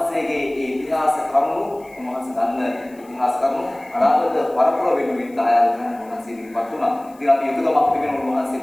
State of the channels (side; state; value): left; noise; hiss, 29 dB below the sound